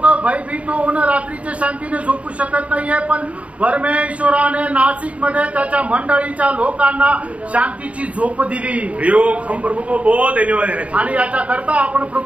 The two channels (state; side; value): late; left; 0.065 ms